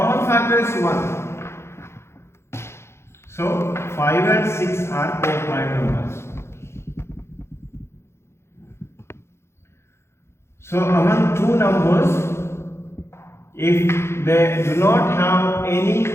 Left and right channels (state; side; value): late; right; 0.13 ms